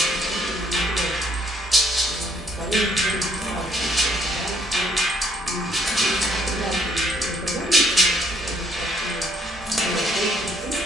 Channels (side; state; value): both; normal; correlation 0.68